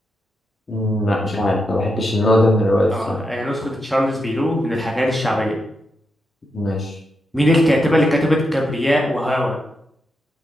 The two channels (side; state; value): both; normal; correlation 0.84